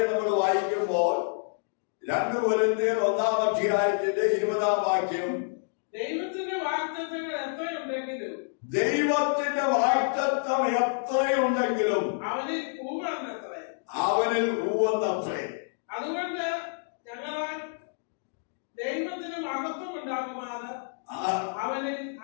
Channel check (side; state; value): right; silent; digital silence